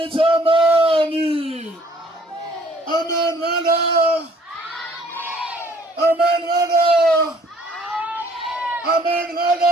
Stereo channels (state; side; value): normal; both; correlation 0.59